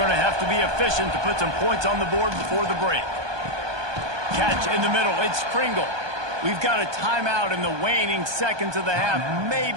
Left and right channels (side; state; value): left; late; 1.2 ms